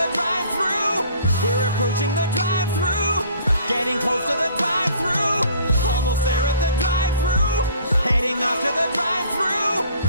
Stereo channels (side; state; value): both; inverted; correlation -0.53